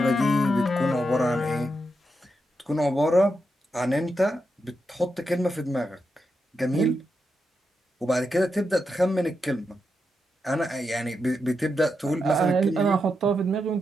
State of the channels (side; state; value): both; normal; correlation 0.85